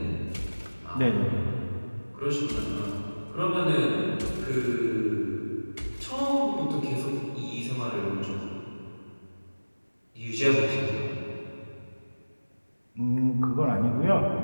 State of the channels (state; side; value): inverted; both; correlation -1.00